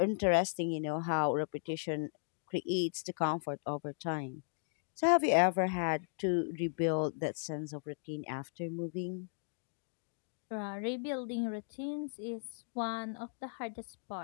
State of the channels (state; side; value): silent; right; digital silence